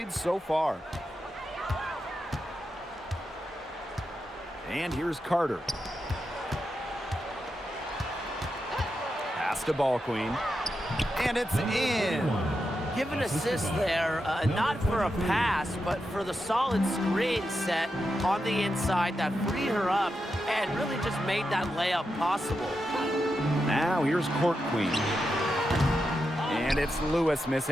so far. And here's Carter. Pass to Ball Queen. And it's in. Give an assist there, not for a pass, but for the solid screen set on the inside that freed her up and really just made that layup possible. Now here's Court Queen. And it's Lewis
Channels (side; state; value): both; normal; correlation 0.87